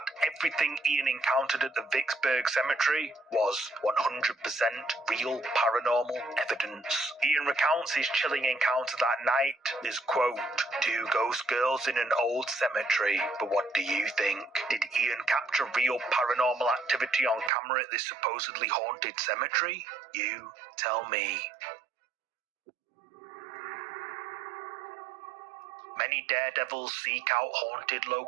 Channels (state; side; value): drops out; left; at 17.5 s